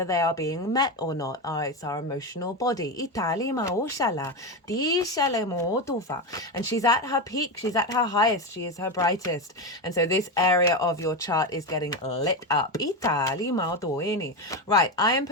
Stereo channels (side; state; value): both; normal; correlation 0.15